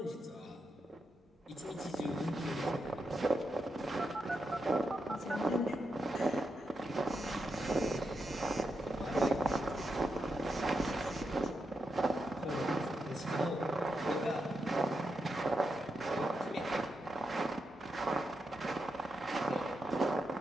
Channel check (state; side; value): normal; both; correlation 0.85